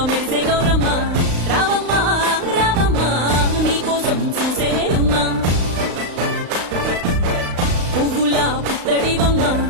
మెరిసే గౌరమ్మ రావమ్మా రావమ్మా నీకోసం చూసేనేలమ్మా పువ్వులా పుత్తడివమ్మ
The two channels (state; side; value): late; left; 35 ms